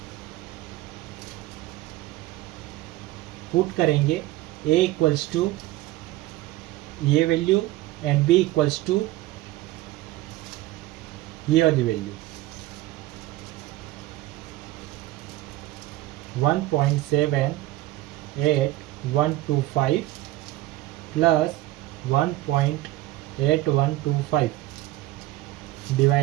पुट करेंगे। a इक्वल्स टू ये value and b equals to ये वाली value. 1.78125 plus 1.8125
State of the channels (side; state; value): left; quieter; 16.8 dB